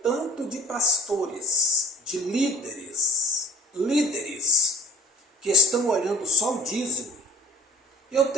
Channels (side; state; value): both; normal; correlation 0.47